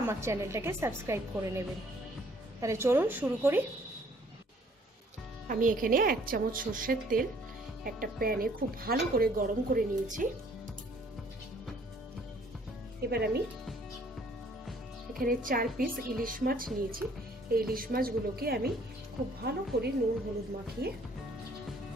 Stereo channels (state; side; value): normal; both; correlation 0.60